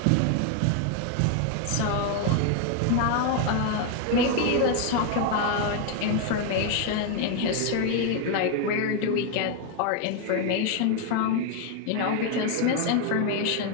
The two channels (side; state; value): both; different; correlation 0.01